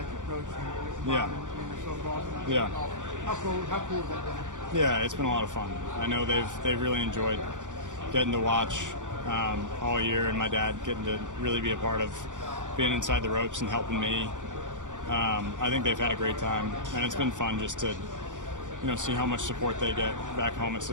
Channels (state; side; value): late; left; 0.87 ms